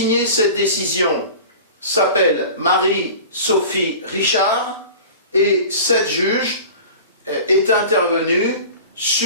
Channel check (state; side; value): inverted; both; correlation -0.38